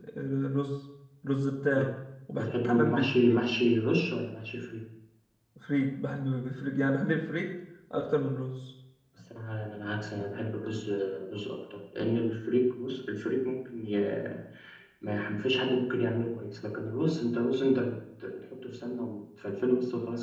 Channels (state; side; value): identical; both; correlation 1.00